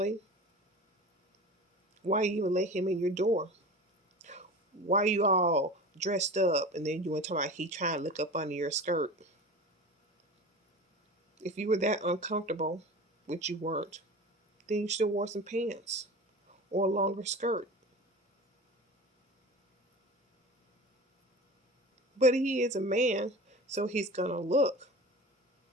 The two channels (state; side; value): normal; both; correlation 0.34